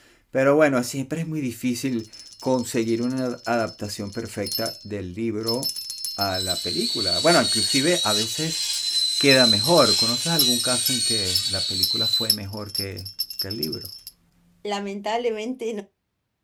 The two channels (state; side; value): identical; both; correlation 1.00